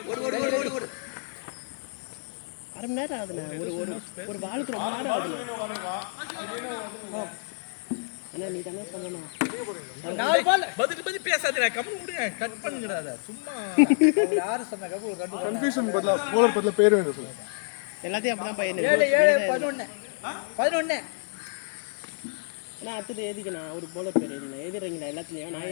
ஓடு அரை மணி நேரம் ஆகுதுண்ணா ஒரு பாலுக்கு ரொம்ப நேரம் ஆகுது அண்ணா நீ தானே சொல்லணும் 4 பால் பதில் பேசாதீங்க கம்மி விடுங்க கட் பண்ணுங்கடா சும்மா யாரு சொன்னா கப்பு ஒரு ரெண்டு கன்ஃபியூஷன் பதிலா போலர் பதிலா பேர் வேணும் சொல்லுங்க எல்லாத்தையும் அப்படிதான் பையன் 11 அண்ணா அடுத்து எழுதிக்கண்ணா ஒரு போலர் பேர் எழுதினா எழுதுறீங்களா எல்லாத்துலயும் நான்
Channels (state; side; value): silent; right; digital silence